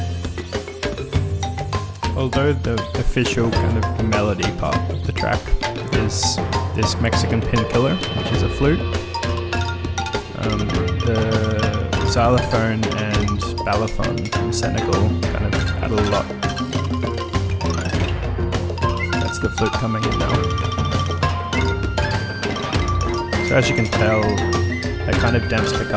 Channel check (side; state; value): both; identical; correlation 1.00